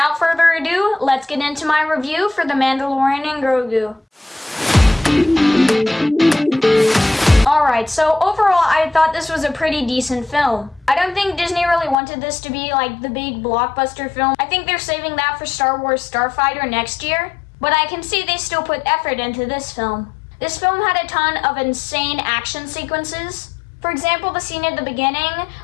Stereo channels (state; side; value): drops out; right; at 12.0 s